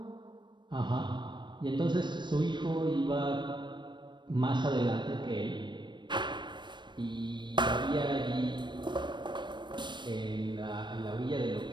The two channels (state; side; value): late; left; 0.22 ms